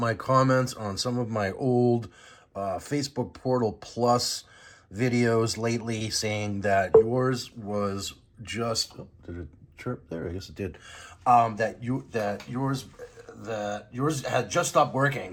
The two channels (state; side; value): identical; both; correlation 1.00